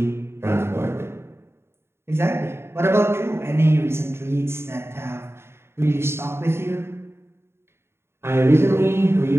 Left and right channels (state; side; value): late; left; 0.12 ms